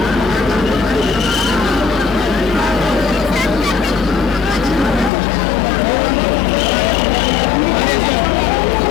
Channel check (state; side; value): drops out; right; at 5.1 s